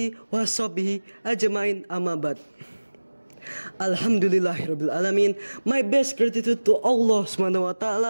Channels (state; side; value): inverted; both; correlation -1.00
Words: washabihi ajmain, amma ba'd. Alhamdulillahirabbil alamin. My best gratitude to Allah Subhanahu wa